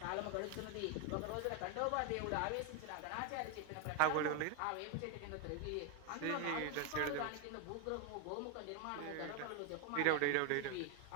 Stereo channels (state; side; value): different; both; correlation 0.01